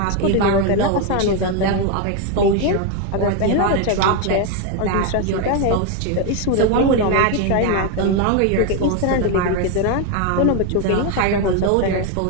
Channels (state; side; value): different; both; correlation 0.01